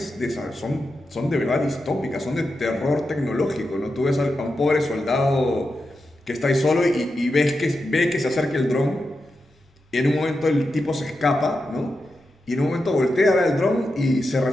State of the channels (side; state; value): both; normal; correlation 0.88